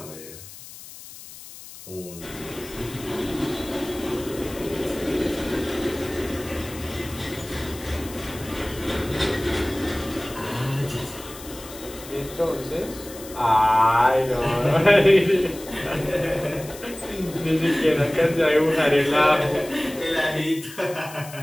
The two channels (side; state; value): left; noise; hiss, 16 dB below the sound